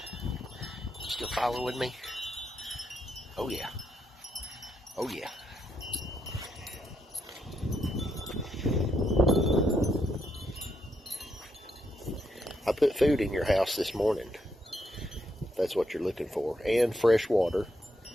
Still following me? Oh yeah. Oh yeah. I put food in your house this morning, if that's what you're looking for, and fresh water.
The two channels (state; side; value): normal; both; correlation 0.79